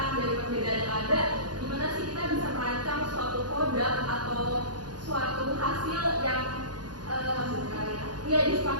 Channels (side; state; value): left; late; 0.70 ms